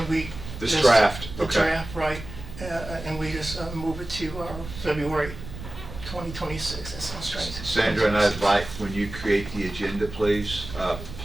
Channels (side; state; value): right; noise; rumble, 12 dB below the sound